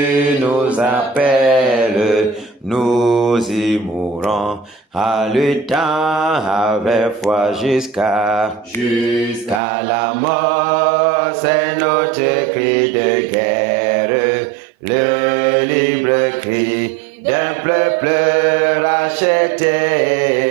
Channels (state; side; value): drops out; left; at 9.6 s